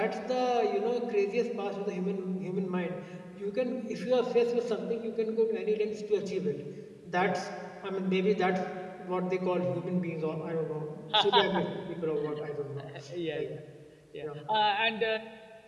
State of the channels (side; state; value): both; identical; correlation 1.00